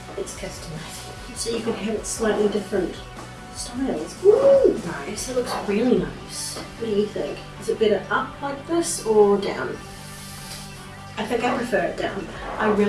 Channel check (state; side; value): identical; both; correlation 1.00